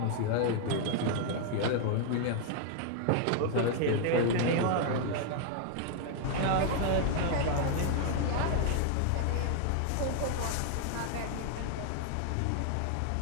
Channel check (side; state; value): both; different; correlation 0.00